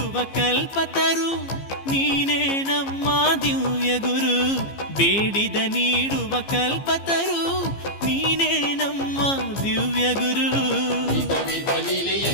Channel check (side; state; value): right; late; 15 ms